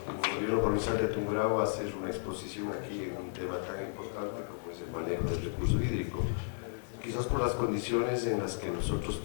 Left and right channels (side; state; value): right; silent; digital silence